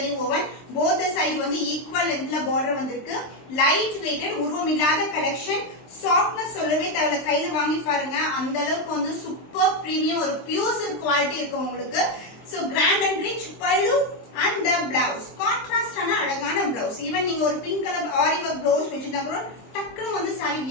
ஓவன், போத் சைடு வந்து ஈக்குவல் லென்த்ல பார்டர் வந்திருக்கு. லைட் வெயிட்டட், உருவம் இல்லாத கலெக்ஷன். சாஃப்ட்னஸ் சொல்லவே தேவையில்ல, கையில வாங்கி பாருங்க, அந்த அளவுக்கு வந்து சூப்பர் பிரீமியம் ஒரு பியூர் சில்க் குவாலிட்டி இருக்கு உங்களுக்கு. So grand and rich pallu and the blouse, கான்ட்ராஸ்டான அழகான பிளவுஸ். ஈவன் நீங்க ஒரு பிங்க் கலர் ஆரி ஒர்க் பிளவுஸ் வச்சிருந்தா கூட டக்குன்னு வந்து சாரி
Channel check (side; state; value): right; late; 23 ms